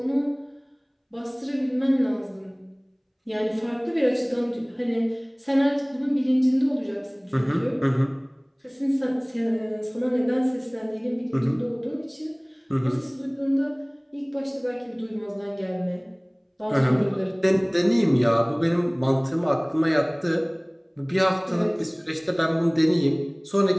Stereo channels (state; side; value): identical; both; correlation 1.00